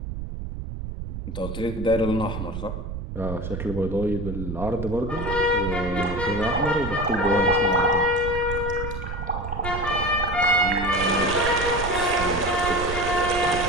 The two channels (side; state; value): right; noise; rumble, 7 dB below the sound